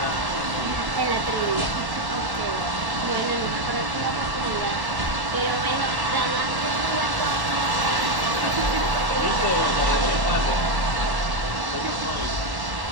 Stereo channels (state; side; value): late; left; 1.1 ms